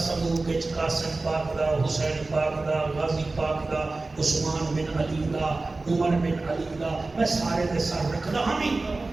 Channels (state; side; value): quieter; left; 3.4 dB